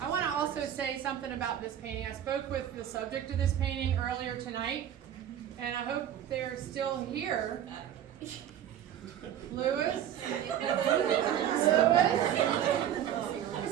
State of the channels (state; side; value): quieter; left; 10.5 dB